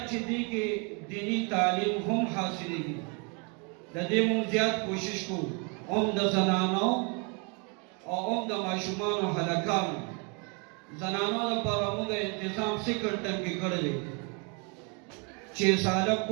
چې دې کې دینی تعلیم هم حاصلېږي د دې موږ زیات کوشش کوو د زنانو او د ماشومانو هلکانو زنانو لپاره موږ انتظام سیکنډ ټرم کې کړی دی چې ساله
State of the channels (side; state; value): left; quieter; 34.0 dB